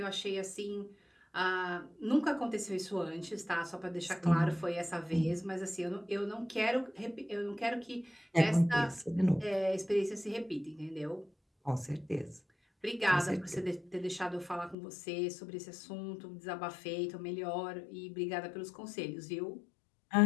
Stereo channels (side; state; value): right; drops out; at 14.8 s